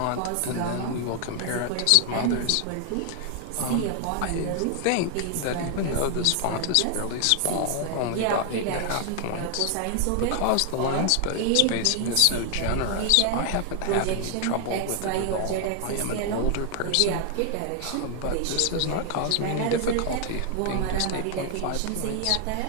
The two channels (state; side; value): different; both; correlation 0.00